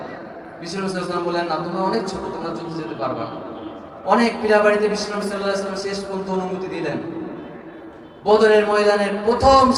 বিশ্বনবী সাল্লাল্লাহু আলাইহি ওয়াসাল্লাম বললেন, না, তোমরা অনেক ছোট, তোমরা যুদ্ধে যেতে পারবে না। অনেক পীড়াবাড়িতে বিশ্বনবী সাল্লাল্লাহু আলাইহি ওয়াসাল্লাম শেষ পর্যন্ত অনুমতি দিলেন। বদরের ময়দানের প্রথম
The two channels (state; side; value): identical; both; correlation 1.00